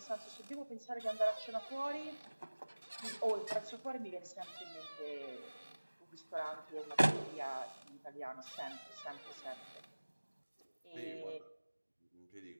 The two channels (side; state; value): both; inverted; correlation -1.00